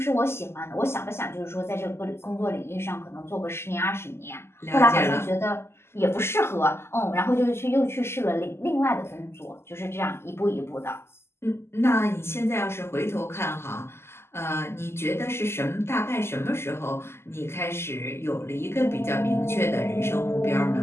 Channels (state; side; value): late; right; 0.12 ms